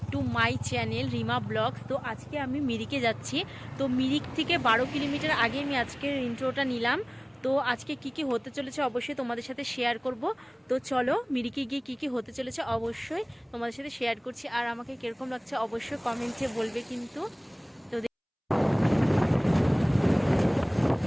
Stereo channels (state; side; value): identical; both; correlation 1.00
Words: to my channel Rima blogs. তো আজকে আমি মিরিকে যাচ্ছি। তো মিরিক থেকে 12 কিলোমিটার আগে আমি আজকের ইন্ট্রোটা নিলাম। তো আজকে কি কি হতে চলেছে অবশ্যই তোমাদের সাথে শেয়ার করব। তো চলো মিরিকে গিয়ে কি কি হতে চলেছে অবশ্যই তোমাদের সাথে শেয়ার করছি। আর আমাকে কিরকম লাগছে অবশ্যই কমেন্টে বলবে কিন্তু। তো